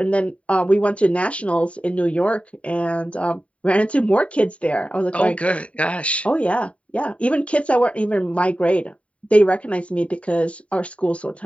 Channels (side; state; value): right; late; 0.064 ms